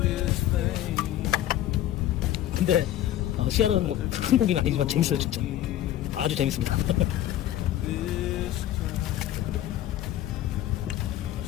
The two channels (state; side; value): quieter; right; 12.7 dB